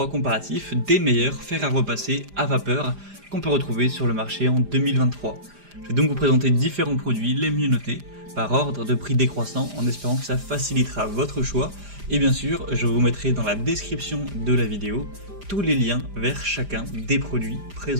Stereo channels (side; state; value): left; late; 5.0 ms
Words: comparatif des meilleurs fers à repasser à vapeur qu'on peut retrouver sur le marché en 2023. Je vais donc vous présenter différents produits les mieux notés par ordre de prix décroissant en espérant que ça facilitera votre choix. Et bien sûr, je vous mettrai dans la description de la vidéo tous les liens vers chacun des produits